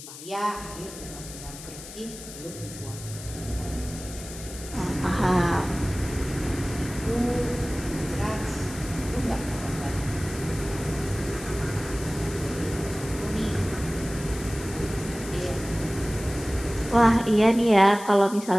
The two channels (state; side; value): noise; left; hiss, 13 dB below the sound